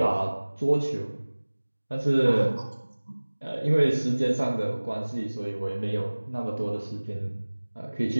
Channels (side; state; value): both; inverted; correlation -1.00